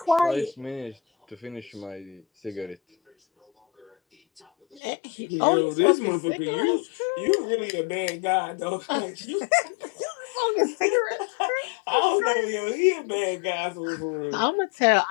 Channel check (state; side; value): drops out; right; at 4.8 s